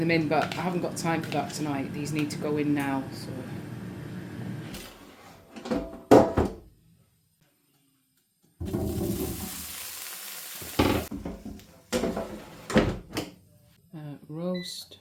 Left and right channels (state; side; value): identical; both; correlation 1.00